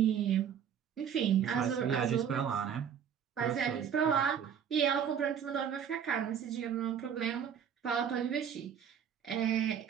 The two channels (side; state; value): left; quieter; 8.3 dB